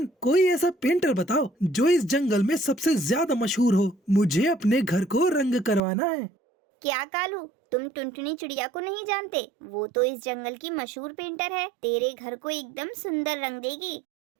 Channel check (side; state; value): left; drops out; at 5.8 s